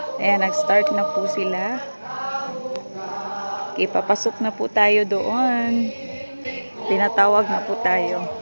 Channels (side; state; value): both; inverted; correlation -1.00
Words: Ayan. Nag-start na po sila. Okay, papasok na po tayo doon. Tinatawag na po tayo.